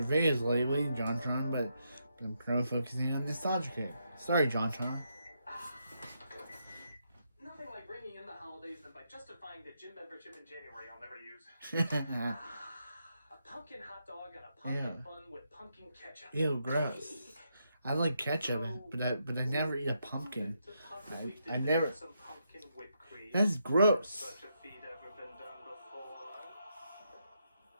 videos lately, JonTron, but I'm focusing on nostalgia here. Sorry, JonTron. Nothing like bringing in the holidays than by justifying the gym membership in January I'll never use. A pumpkin hot dog and a pumpkin bun with pumpkin ketchup. Ew, gross. I like ketchup, but I never eat a pumpkin. I never. That's gross.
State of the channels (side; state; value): both; inverted; correlation -0.80